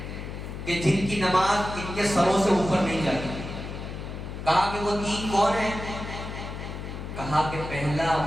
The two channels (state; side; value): noise; left; hum, 8 dB below the sound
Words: کہ جن کی نماز ان کے سروں سے اوپر نہیں جاتی۔ کہا کہ وہ تین کون ہیں؟ کہا کہ پہلا